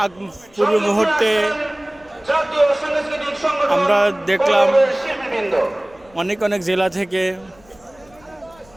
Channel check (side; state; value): left; noise; rumble, 29 dB below the sound